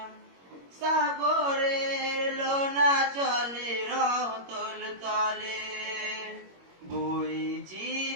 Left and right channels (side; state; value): left; late; 21 ms